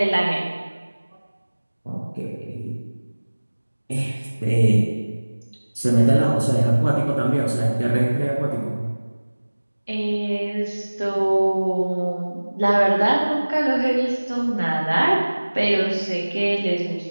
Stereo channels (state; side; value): inverted; both; correlation -1.00